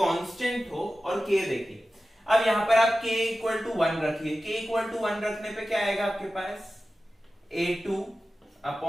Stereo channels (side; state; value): both; normal; correlation 0.94